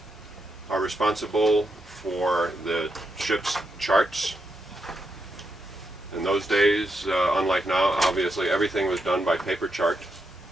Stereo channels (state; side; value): normal; both; correlation 0.83